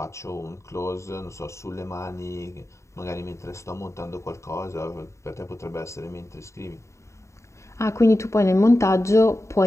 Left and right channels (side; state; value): right; late; 0.14 ms